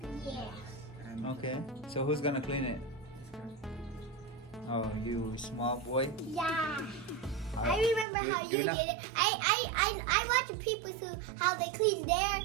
Yeah. and Okay. So who's gonna clean it? Oh, you small boy. Yeah. I remember how you you're not- did it. I watch people how they clean their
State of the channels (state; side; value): drops out; left; at 8.1 s